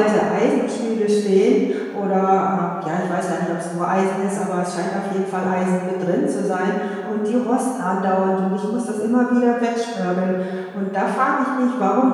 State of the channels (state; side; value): identical; both; correlation 1.00